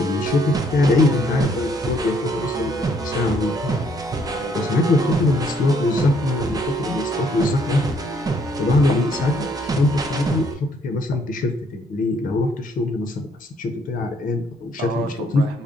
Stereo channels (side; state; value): both; normal; correlation 0.67